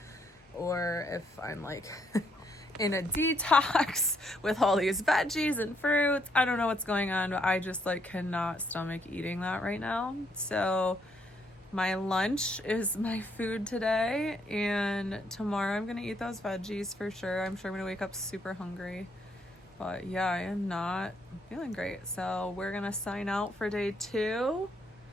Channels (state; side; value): normal; both; correlation 0.72